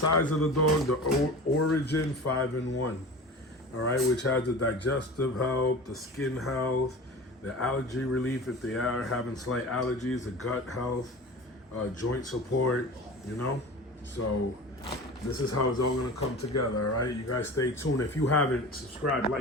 of the dog, the Origin 5-in-1, all right, which has the digestive health, the skin health, the allergy relief if they are having slight allergies, the gut health, joint support, So this is how it's all gonna come together, all right? You guys stay tuned. If you haven't, subscribe,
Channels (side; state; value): both; normal; correlation 0.35